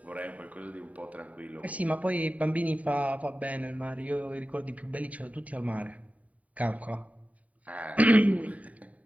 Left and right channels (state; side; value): late; left; 0.069 ms